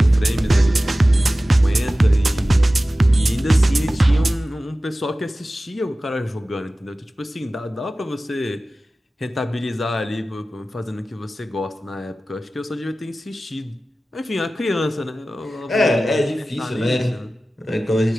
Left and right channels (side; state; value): both; normal; correlation 0.96